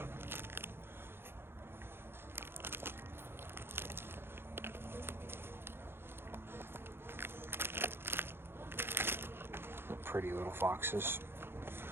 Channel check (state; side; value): late; left; 0.11 ms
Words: Pretty little foxes.